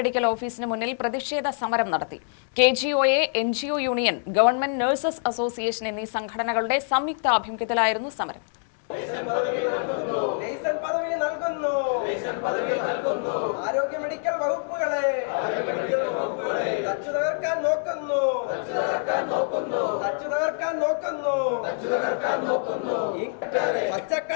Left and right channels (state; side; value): silent; right; digital silence